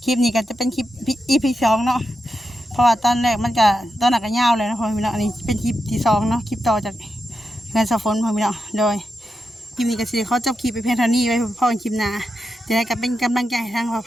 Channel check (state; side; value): normal; both; correlation 0.87